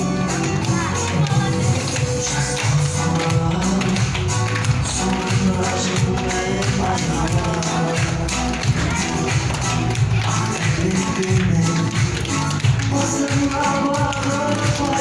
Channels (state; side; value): identical; both; correlation 1.00